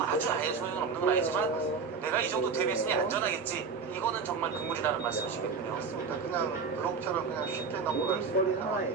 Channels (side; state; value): left; quieter; 5.2 dB